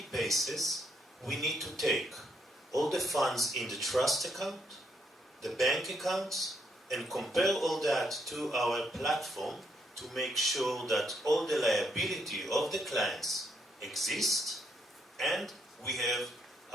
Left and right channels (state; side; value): normal; both; correlation 0.75